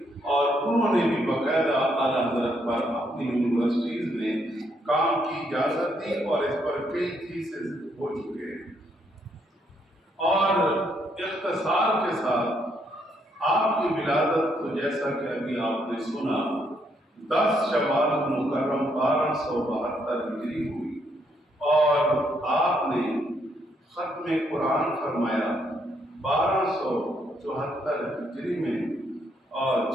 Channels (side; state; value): both; normal; correlation 0.74